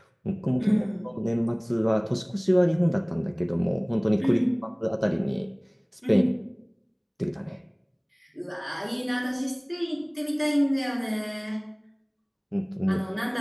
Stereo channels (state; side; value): identical; both; correlation 1.00